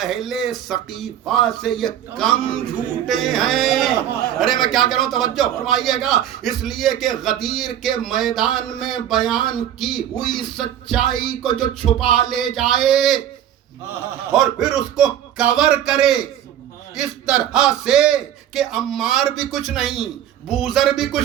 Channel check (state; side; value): quieter; left; 10.7 dB